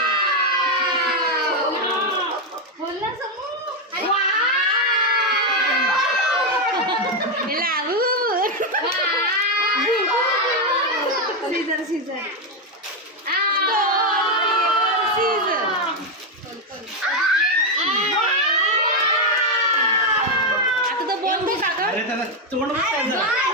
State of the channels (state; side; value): normal; both; correlation 0.05